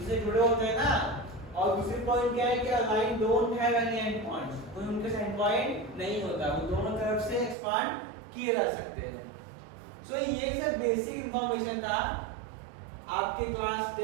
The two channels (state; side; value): drops out; left; at 7.6 s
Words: से जुड़े होते हैं ना। और दूसरी पॉइंट क्या है कि a line don't have any and points, कोई उनके एंड पॉइंट नहीं होता, वो दोनों तरफ से एक्सपांड किए जा सकते हैं। सो ये सब बेसिक इंफॉर्मेशन था, आपके क्लास